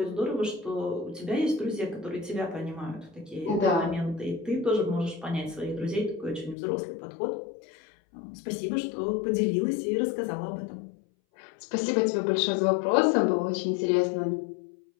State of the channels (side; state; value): right; drops out; at 6.6 s